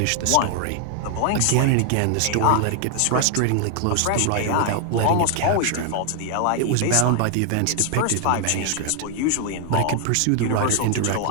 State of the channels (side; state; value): both; different; correlation 0.00